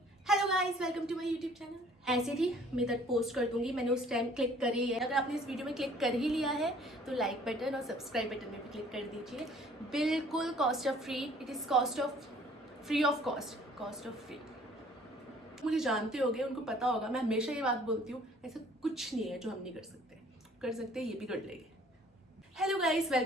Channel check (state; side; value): normal; both; correlation 0.55